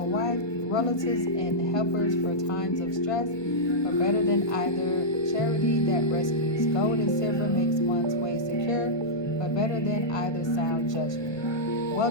wife, relatives and helpers for times of stress, but better than either charity that rescues. Gold and silver makes one's way secure, but better than either sound judgment.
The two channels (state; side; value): late; right; 1.2 ms